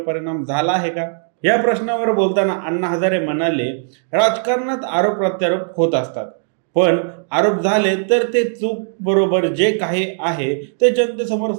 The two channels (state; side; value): silent; left; digital silence